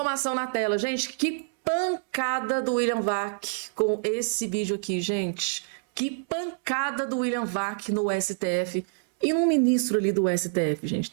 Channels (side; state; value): left; silent; 60 dB below the other